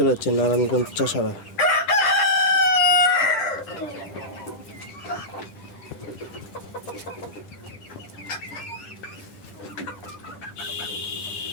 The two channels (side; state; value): right; late; 10 ms